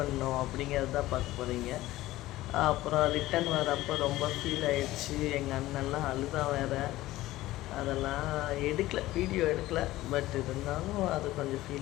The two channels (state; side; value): quieter; right; 16.6 dB